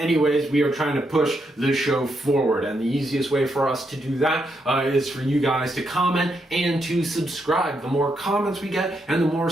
we are trying to push the show forward. And the easiest way for us to do that is for you guys to comment and to subscribe. The more comments we get and the more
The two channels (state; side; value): normal; both; correlation 0.80